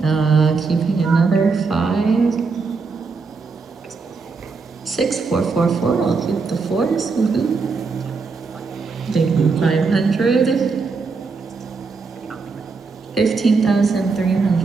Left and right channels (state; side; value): quieter; left; 4.6 dB